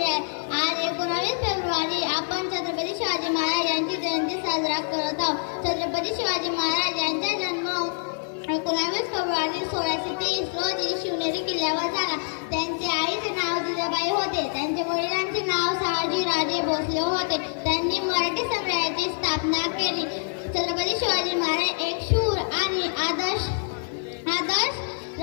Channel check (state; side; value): silent; right; 61 dB below the other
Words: आज 19 फेब्रुवारी आपण छत्रपती शिवाजी महाराज यांची जयंती साजरा करत आहोत. छत्रपती शिवाजी महाराज यांचा जन्म 19 फेब्रुवारी 1630 रोजी शिवनेरी किल्ल्यावर झाला. त्यांचे आईचे नाव जिजाबाई होते. त्यांच्या वडिलांचे नाव शहाजी राजे भोसले होते. त्यांनी मराठी साम्राज्याची स्थापना केली. छत्रपती शिवाजी महाराज एक शूर आणि आदर्श